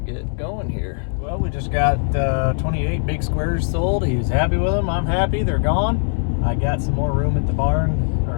going here. Well, we just got 28 big squares sold. He was happy with them. I'm happy. They're gone. I got some more room at the barn, or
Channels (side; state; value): right; silent; 60 dB below the other